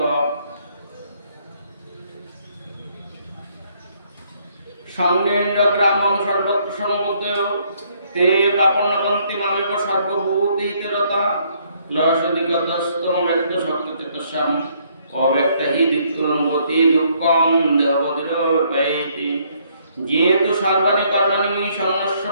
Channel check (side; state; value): both; inverted; correlation -0.67